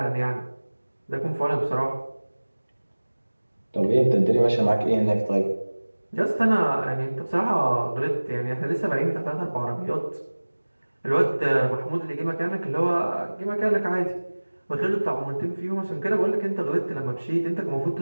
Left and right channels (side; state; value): both; inverted; correlation -1.00